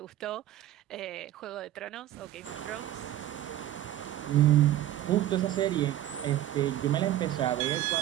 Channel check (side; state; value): left; quieter; 13.0 dB